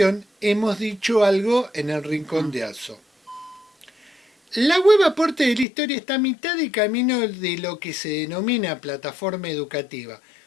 hemos dicho algo en el Rincón de Atso. La web Aporte de la Historia está a mitad de camino de lo que se denomina plataforma educativa.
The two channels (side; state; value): right; drops out; at 5.7 s